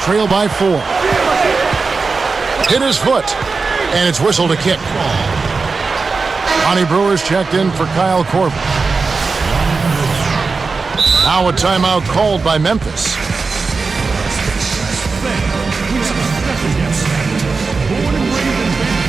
by 4. Hit his foot, and it's whistled a kick. Lonnie Brewer's checked in for Kyle Korver. Now a timeout called by Memphis.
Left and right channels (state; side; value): quieter; left; 4.4 dB